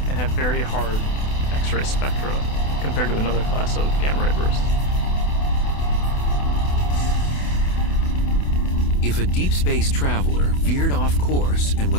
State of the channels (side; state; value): right; late; 28 ms